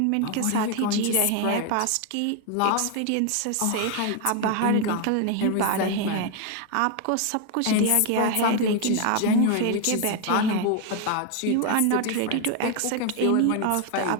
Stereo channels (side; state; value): both; different; correlation 0.01